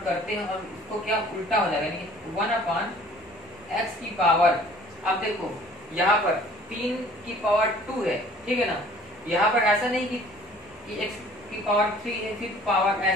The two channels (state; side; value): normal; both; correlation 0.52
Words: करते हैं और इसको क्या उल्टा हो जाएगा, यानी कि 1/x की पावर। अब देखो यहाँ पर 3 की पावर 2 है, ठीक है ना, यहाँ पर ऐसा नहीं कि x की पावर 3 है फिर पावर